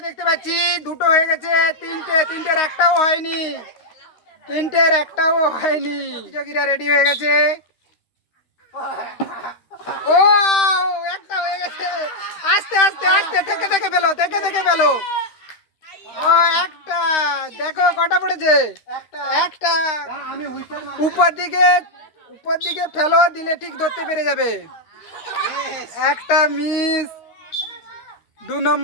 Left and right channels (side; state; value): right; late; 13 ms